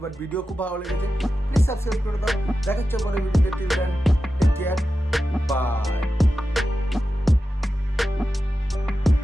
বাট ভিডিও খুব ভালো লেগেছে, প্লিজ সাবস্ক্রাইব করে দাও। দেখা হচ্ছে পরে ভিডিওতে, till then take care, by.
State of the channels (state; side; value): normal; both; correlation 0.92